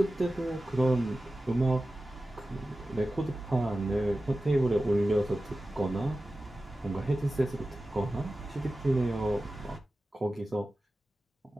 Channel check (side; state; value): both; normal; correlation 0.95